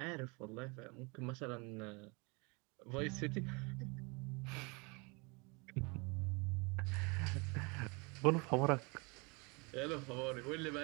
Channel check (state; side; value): quieter; left; 29.4 dB